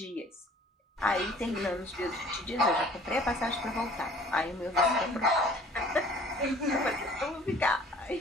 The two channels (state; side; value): normal; both; correlation 0.52